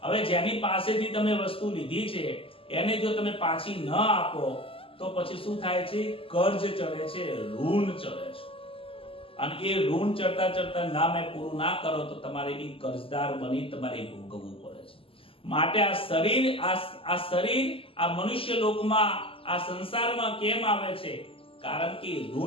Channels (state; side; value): late; right; 0.26 ms